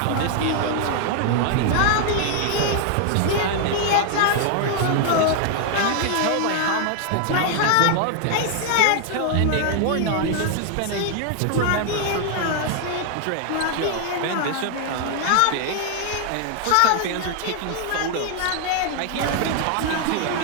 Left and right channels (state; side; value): different; both; correlation 0.00